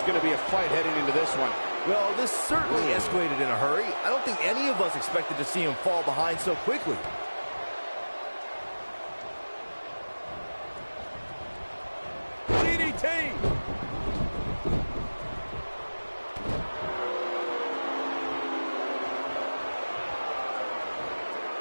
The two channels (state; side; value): inverted; both; correlation -1.00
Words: going to be a fight heading into this one. Well, this certainly escalated in a hurry. I don't think any of us expected to see him fall behind so quickly.